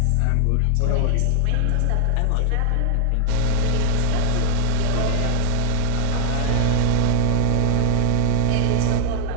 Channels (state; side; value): different; both; correlation 0.00